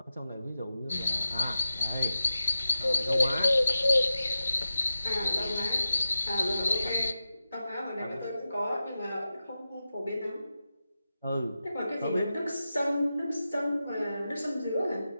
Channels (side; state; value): both; inverted; correlation -0.92